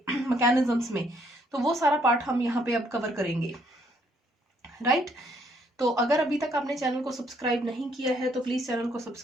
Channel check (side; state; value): both; normal; correlation 0.69